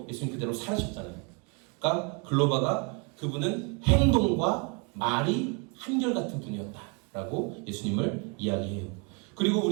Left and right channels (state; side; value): quieter; left; 33.0 dB